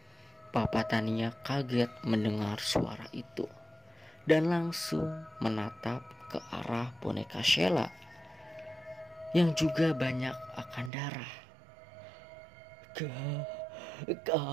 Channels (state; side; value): drops out; left; at 10.9 s